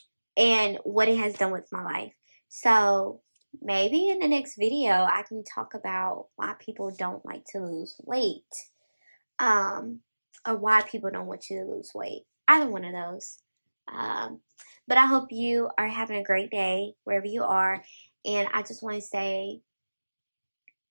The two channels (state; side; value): inverted; both; correlation -1.00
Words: what it has done with my life. So maybe in the next video I can talk about why people don't like to lose weight. Or why people don't want you to lose weight. Either one of those. But I hope you are having a great day wherever you are. And I just want to say,